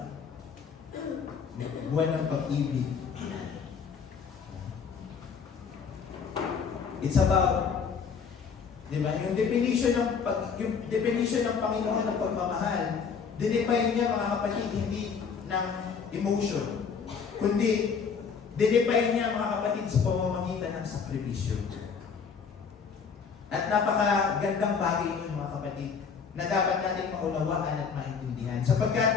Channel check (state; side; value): quieter; right; 6.1 dB